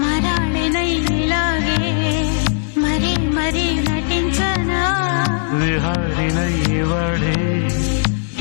మరాళినైలాగే మరీ మరీ నటించనా విహారినై వాడే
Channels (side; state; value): right; silent; digital silence